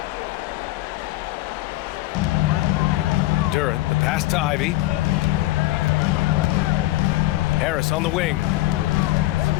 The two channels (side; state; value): right; quieter; 17.5 dB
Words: Duran, the pass to Ivy. Harris on the wing.